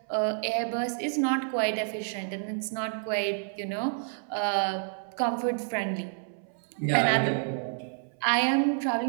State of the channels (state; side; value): silent; left; 58 dB below the other